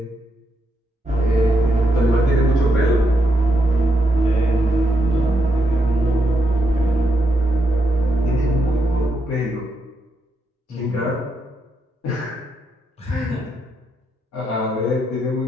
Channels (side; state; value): both; normal; correlation 0.80